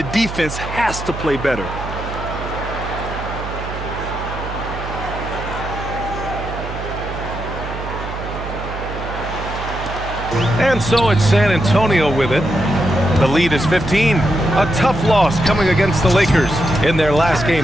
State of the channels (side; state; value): right; noise; hum, 9 dB below the sound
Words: defense has to play better. And so it's San Antonio with it. The lead is 15. A tough loss coming against the Lakers in their last